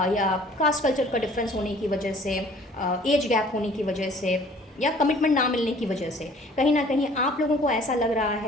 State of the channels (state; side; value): normal; both; correlation 0.53